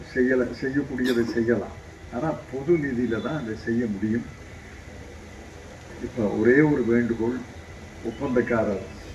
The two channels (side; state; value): both; identical; correlation 1.00